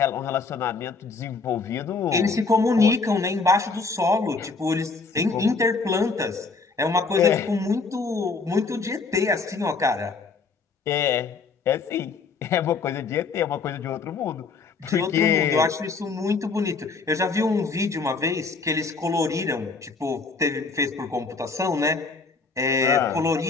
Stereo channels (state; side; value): quieter; right; 4.4 dB